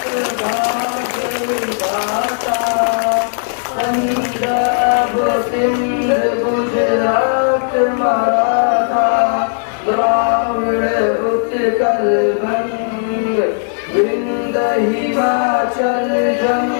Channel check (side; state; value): right; silent; 66 dB below the other